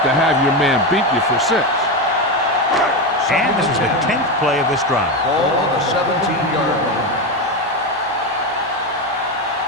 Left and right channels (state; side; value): normal; both; correlation 0.14